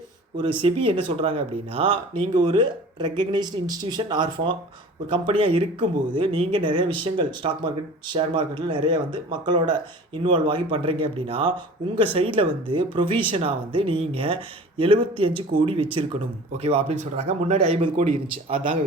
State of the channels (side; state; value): both; normal; correlation 0.42